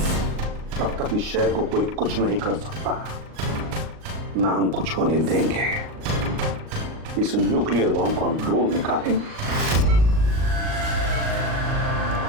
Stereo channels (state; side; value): late; left; 38 ms